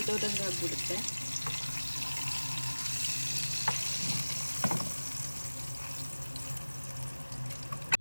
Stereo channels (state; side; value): inverted; both; correlation -1.00